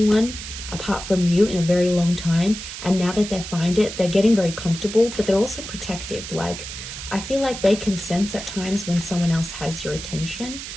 apart from you in a very long time, and now that they find it, they're getting very comfortable, but they're also protective. Like, I feel like they can sense at times when someone else has your attention,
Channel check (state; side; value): noise; right; hiss, 9 dB below the sound